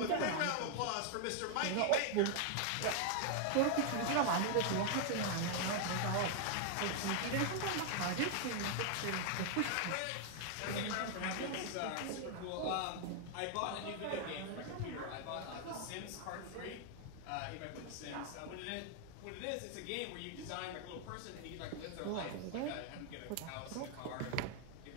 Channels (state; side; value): different; both; correlation 0.00